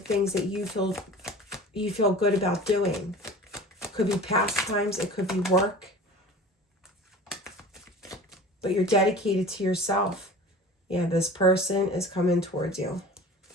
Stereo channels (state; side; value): normal; both; correlation 0.40